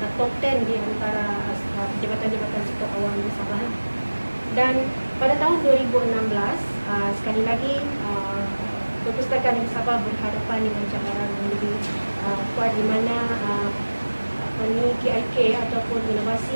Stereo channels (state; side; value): inverted; both; correlation -1.00